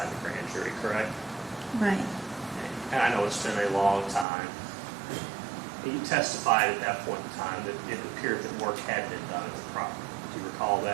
in the grand jury, correct? Right. Okay. And I know it's been a long time. You testified at that point in time that it appeared that work had been done at the property. Do you recall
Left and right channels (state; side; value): drops out; left; at 4.2 s